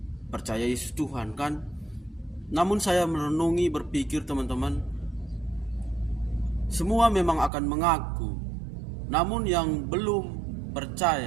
percaya Yesus Tuhan kan. Namun saya merenungi, berpikir teman-teman, semua memang akan mengaku. Namun yang belum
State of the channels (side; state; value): left; drops out; at 7.5 s